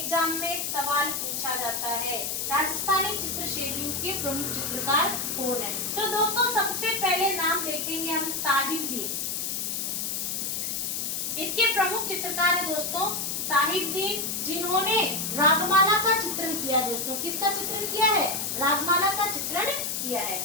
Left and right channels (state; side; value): noise; left; hiss, 2 dB below the sound